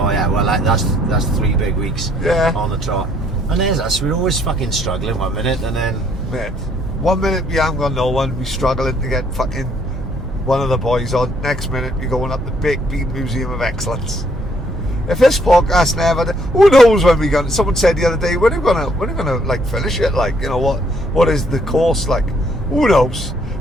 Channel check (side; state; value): both; normal; correlation 0.67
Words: yeah, well that's 3 big weeks. Yeah. On the trot. And there's us. We're always fucking struggling 1 minute, and then Mate, 1 minute we haven't got no one. We struggling to get fucking one of the boys on. Next minute we going up the Big Bean Museum of Excellence. If this podcast never, who knows when we're gonna? Someone said the other day, when are we gonna like finish it? Like, you know what is the course like? Who knows?